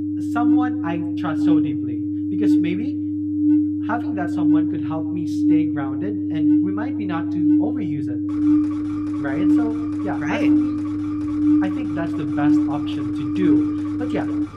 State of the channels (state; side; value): identical; both; correlation 1.00